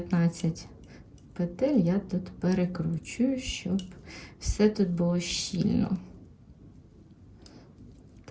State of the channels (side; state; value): both; identical; correlation 1.00